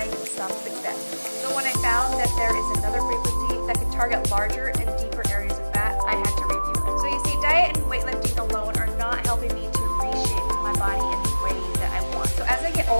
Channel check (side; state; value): both; inverted; correlation -1.00